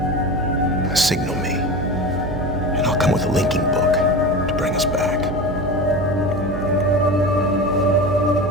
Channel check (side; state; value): right; noise; hum, 5 dB below the sound